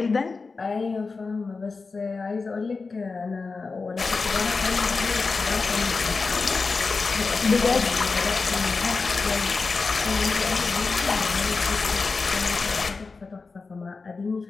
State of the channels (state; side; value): quieter; right; 4.3 dB